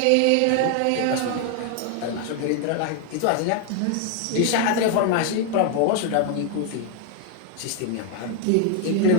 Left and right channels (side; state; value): both; different; correlation 0.00